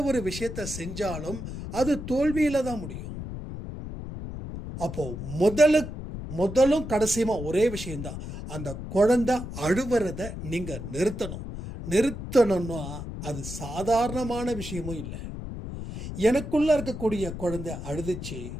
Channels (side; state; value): left; noise; rumble, 8 dB below the sound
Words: ஒரு விஷயத்தை செஞ்சாலும் அது தோல்வியில் தான் முடியும். அப்போ முதலும் கடைசியுமா ஒரே விஷயம்தான், அந்த குழந்தை அழுவுறதை நீங்கள் நிறுத்தணும்னா அது சாதாரணமான விஷயமும் இல்லை. எனக்குள்ள இருக்கக்கூடிய குழந்தை அழுதுச்சு,